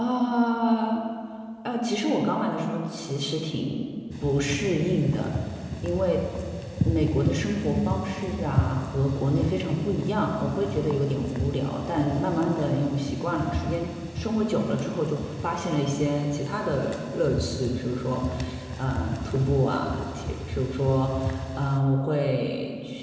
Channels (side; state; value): both; identical; correlation 1.00